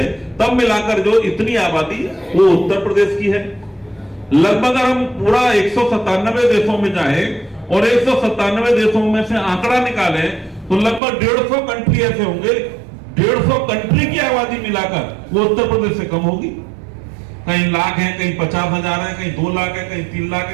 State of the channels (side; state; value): left; drops out; at 11.0 s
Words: तब मिलाकर जो इतनी आबादी वो उत्तर प्रदेश की है। लगभग अगर हम पूरा 197 देशों में जाए और 197 देशों में से आंकड़ा निकालें तो लगभग 150 कंट्री ऐसे होंगे 150 कंट्री की आबादी मिलाकर वो उत्तर प्रदेश से कम होगी। कहीं लाख है, कहीं 50,000 है, कहीं 2 लाख है, कहीं 3 लाख